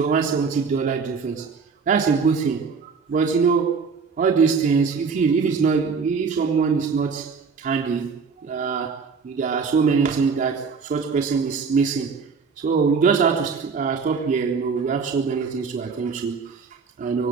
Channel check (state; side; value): quieter; left; 5.3 dB